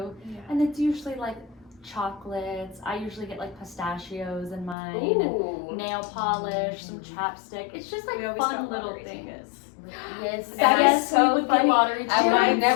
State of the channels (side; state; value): right; drops out; at 4.8 s